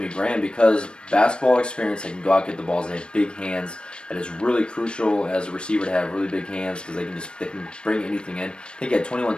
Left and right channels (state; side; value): late; right; 0.054 ms